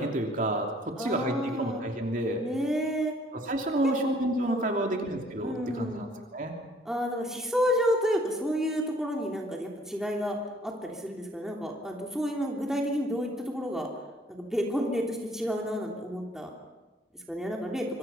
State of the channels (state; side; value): normal; both; correlation 0.59